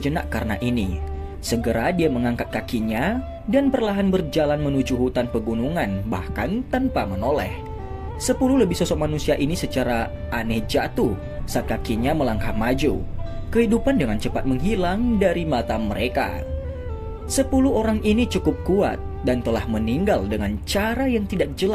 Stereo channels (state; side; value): identical; both; correlation 1.00